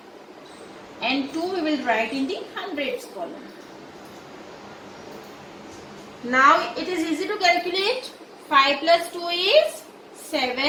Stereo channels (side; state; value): both; identical; correlation 1.00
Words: and 2 we will write in the hundreds column. Now it is easy to calculate. 5 plus 2 is